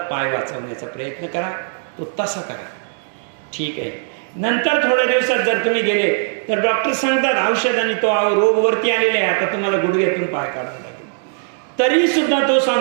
वाचवण्याचा प्रयत्न करा, तो तसा करा. ठीक आहे. नंतर थोड्या दिवसात जर तुम्ही गेले तर डॉक्टर सांगतात औषधाने तो रोग वरती आलेला आहे, आता तुम्हाला गुडघ्यातून पाय काढावा लागेल. तरी सुद्धा तो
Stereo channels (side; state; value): left; silent; 60 dB below the other